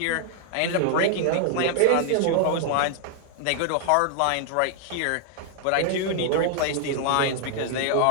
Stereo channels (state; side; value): different; both; correlation 0.00